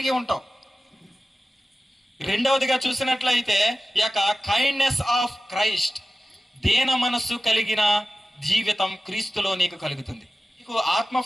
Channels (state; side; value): normal; both; correlation 0.94